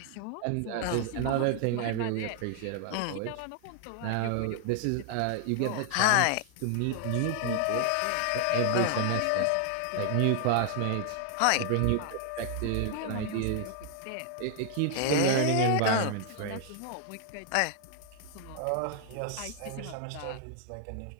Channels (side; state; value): both; different; correlation 0.00